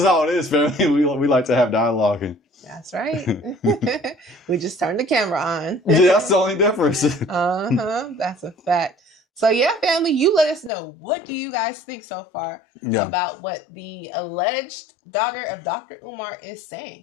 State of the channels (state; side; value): drops out; right; at 10.7 s